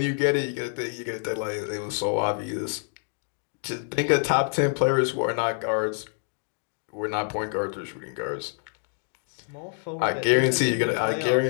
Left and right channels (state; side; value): silent; right; 56 dB below the other